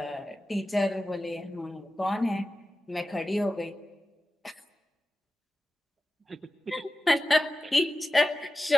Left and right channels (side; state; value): both; normal; correlation 0.94